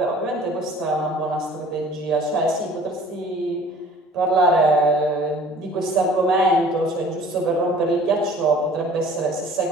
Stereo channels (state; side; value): normal; both; correlation 0.49